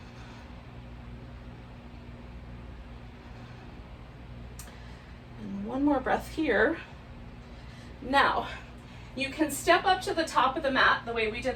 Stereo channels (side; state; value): both; identical; correlation 1.00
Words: And one more breath here. Now, you can step up to the top of the mat the way we